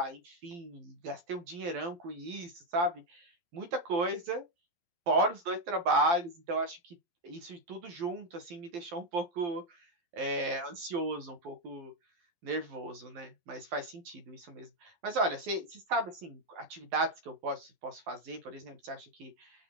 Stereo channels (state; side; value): late; left; 12 ms